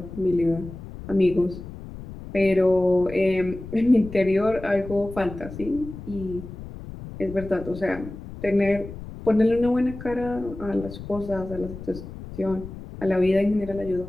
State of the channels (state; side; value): noise; left; rumble, 12 dB below the sound